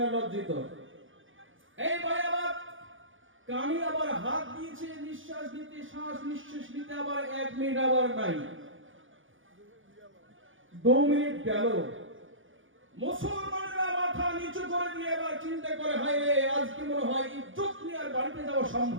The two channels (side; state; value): left; late; 0.57 ms